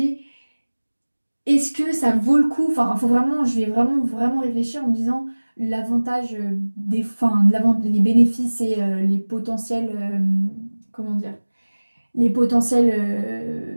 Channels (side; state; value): both; inverted; correlation -1.00